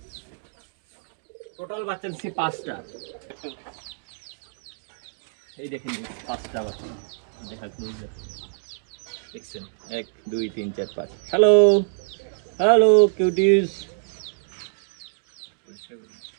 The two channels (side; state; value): left; silent; digital silence